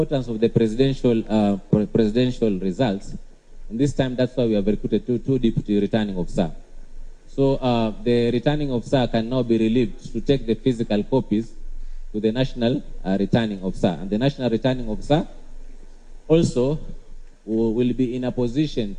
of the presidential results, and this time that's why we have recruited two deputy returning officers. So the returning officer can now be relieved to take the physical copies to the national returning officer, and the national returning officer also will be in a position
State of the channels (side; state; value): both; identical; correlation 1.00